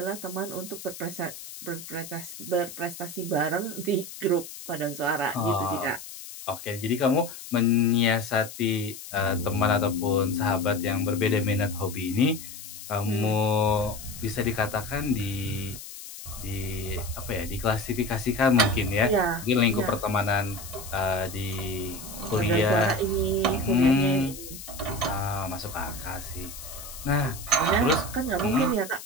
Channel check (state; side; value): noise; left; hiss, 13 dB below the sound